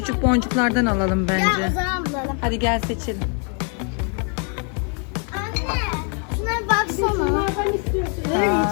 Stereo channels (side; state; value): right; quieter; 39.3 dB